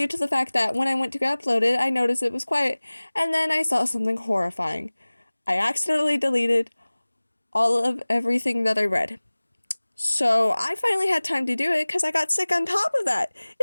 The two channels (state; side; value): inverted; both; correlation -1.00